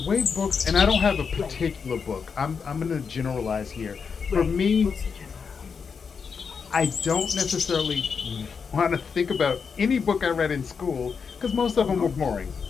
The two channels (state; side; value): quieter; right; 5.9 dB